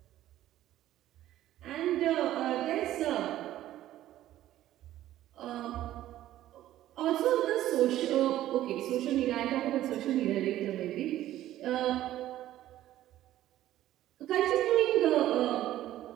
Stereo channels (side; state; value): left; quieter; 13.6 dB